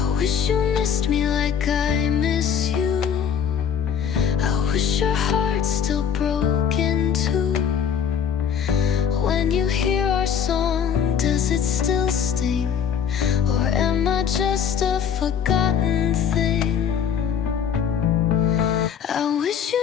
wish you missed me like I miss you. I wish your heart's still broken too. When you hear our song, does it still sting? Or am I just a forgotten thing? I wish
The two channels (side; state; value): right; quieter; 7.9 dB